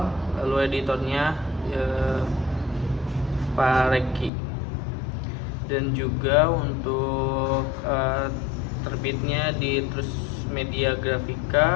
lalu editornya Pak Reki. Dan juga untuk terbitnya di Terus Media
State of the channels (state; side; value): drops out; right; at 4.3 s